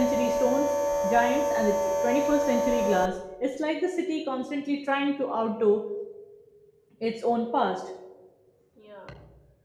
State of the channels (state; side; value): identical; both; correlation 1.00